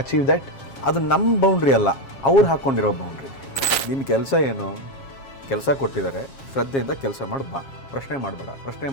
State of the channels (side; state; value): right; late; 7.4 ms